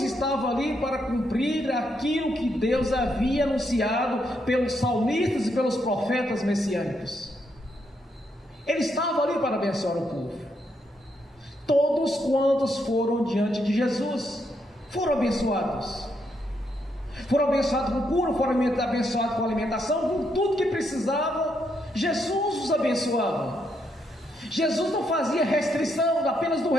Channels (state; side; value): normal; both; correlation 0.78